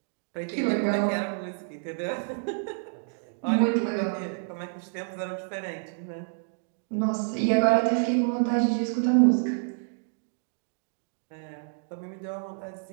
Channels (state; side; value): silent; left; digital silence